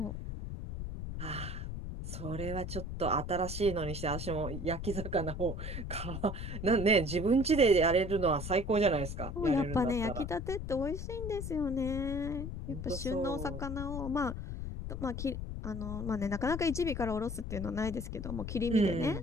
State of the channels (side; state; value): left; noise; rumble, 6 dB below the sound